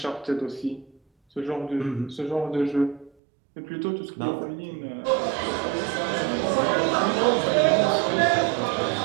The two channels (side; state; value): left; drops out; at 3.1 s